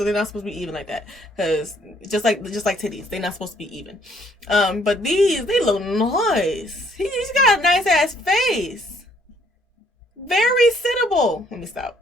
they're not supposed to be even like that. Cause just like titties, they're not supposed to be even. But these, they look nice. He's got a nice ass face. Very sittable. Let me stop.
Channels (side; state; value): both; normal; correlation 0.65